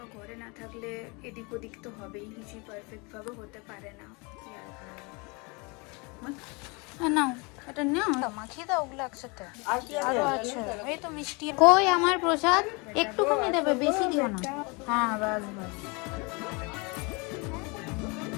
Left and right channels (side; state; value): right; quieter; 29.2 dB